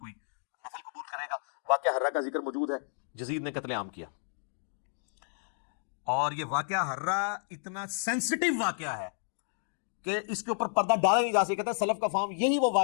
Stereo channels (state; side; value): silent; right; digital silence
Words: نفل قبول کرے گا۔ واقعہ ہرہ کا ذکر موجود ہے، یزید نے قتل عام کیا، اور یہ واقعہ ہرہ اتنا سینسٹیو واقعہ ہے کہ اس کے اوپر پردہ ڈالا نہیں جا سکتا۔ کہتا ہے سلف کا فہم یہی وہ